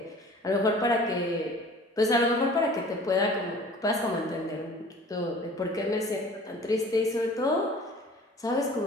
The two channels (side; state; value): both; normal; correlation 0.47